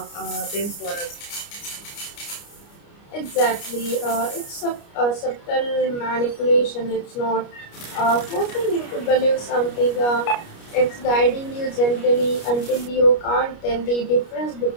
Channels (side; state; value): right; late; 29 ms